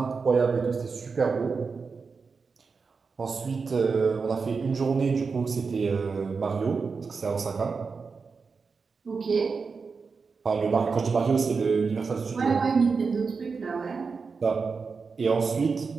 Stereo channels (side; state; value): left; quieter; 4.9 dB